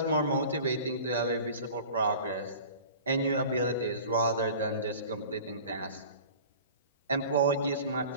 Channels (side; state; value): both; inverted; correlation -0.42